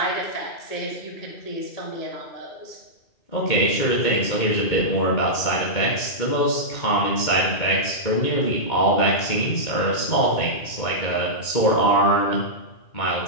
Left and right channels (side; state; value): right; late; 2.1 ms